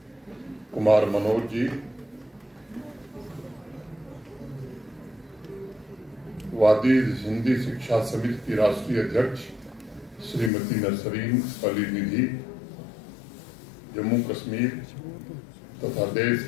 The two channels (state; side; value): drops out; right; at 10.5 s